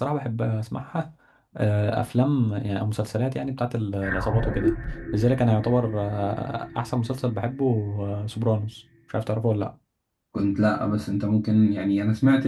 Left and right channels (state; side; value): identical; both; correlation 1.00